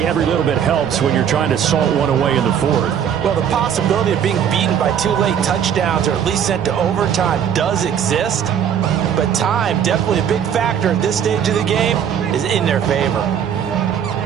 every little bit helps when you're trying to salt one away in the fourth. Well, the possibility of being beaten by 2 late touchdowns or at least sent to overtime does exist. But time, definitely a big factor at this stage of the game, is in their favor.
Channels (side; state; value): left; quieter; 8.6 dB